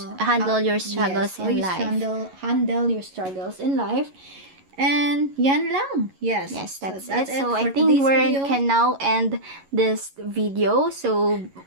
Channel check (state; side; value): late; left; 11 ms